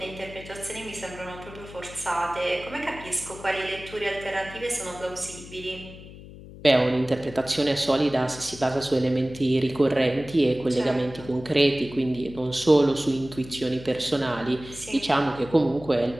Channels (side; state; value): left; noise; hum, 16 dB below the sound